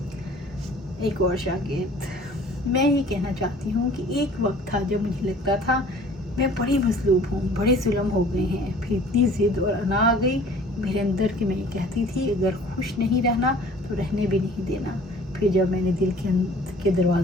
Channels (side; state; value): both; normal; correlation 0.50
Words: ایک اور شاگرد، میں یہ کہنا چاہتی ہوں کہ ایک وقت تھا جب مجھے لگتا تھا میں بڑی مظلوم ہوں، بڑے ظلم ہو گئے ہیں، پھر اتنی ضد اور انا آ گئی میرے اندر کہ میں یہ کہتی تھی اگر خوش نہیں رہنا تو رہنے بھی نہیں دینا۔ پھر جب میں نے دل کے